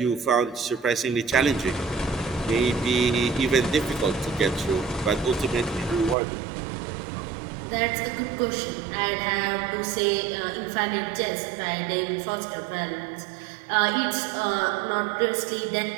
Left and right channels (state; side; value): drops out; left; at 6.2 s